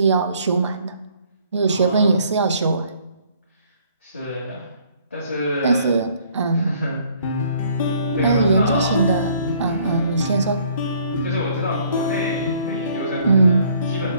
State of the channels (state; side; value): inverted; both; correlation -0.61